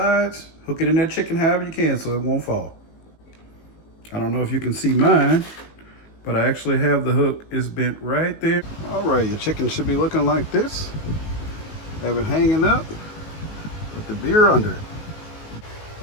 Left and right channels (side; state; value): right; late; 19 ms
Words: Hook it in that chicken however you can so it won't fall. I don't know if you can see mine, but I actually have the hook is bent right there. All right, your chicken should be looking like this. Have it hanging up with the beer under it.